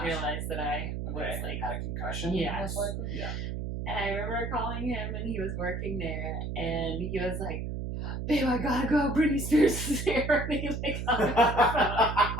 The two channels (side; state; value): right; noise; hum, 4 dB below the sound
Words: realize that I was had a concussion. Yeah. Most likely. Yeah. And I remember calling him, and he was working there, and he was like, "Babe, I gotta go. Britney Spears is here." And he hung up the phone.